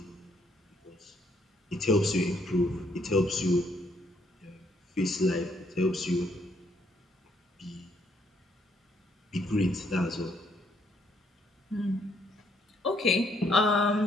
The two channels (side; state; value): both; normal; correlation 0.70